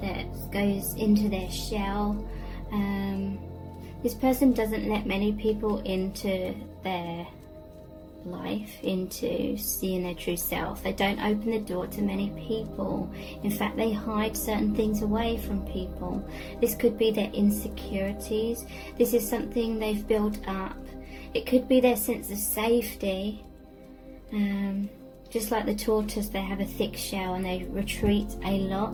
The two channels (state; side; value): identical; both; correlation 1.00